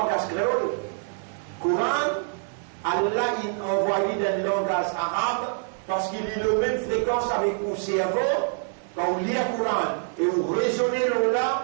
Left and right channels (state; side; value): silent; left; 61 dB below the other